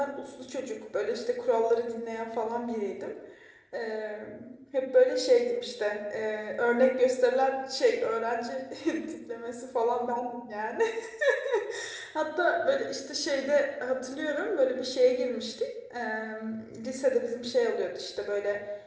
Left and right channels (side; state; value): both; identical; correlation 1.00